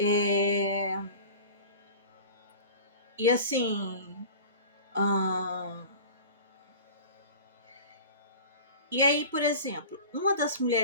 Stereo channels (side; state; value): both; inverted; correlation -0.38